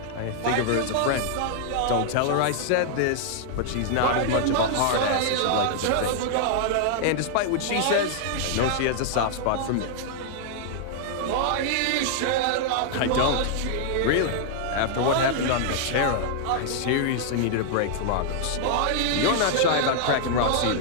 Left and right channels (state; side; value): different; both; correlation 0.00